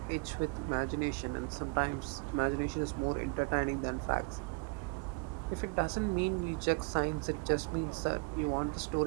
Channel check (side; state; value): left; quieter; 30.5 dB